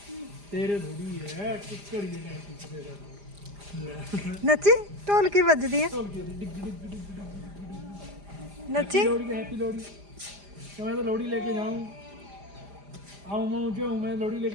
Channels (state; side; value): late; left; 5.0 ms